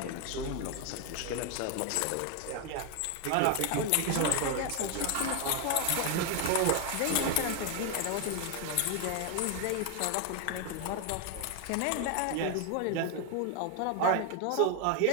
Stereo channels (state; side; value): different; both; correlation 0.01